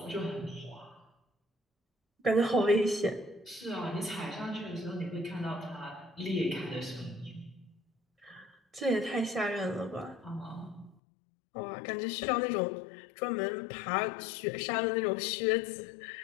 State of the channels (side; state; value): right; drops out; at 11.0 s